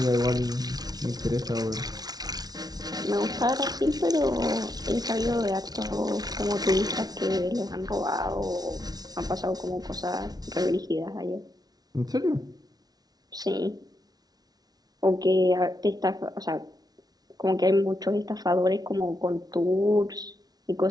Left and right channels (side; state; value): left; late; 0.19 ms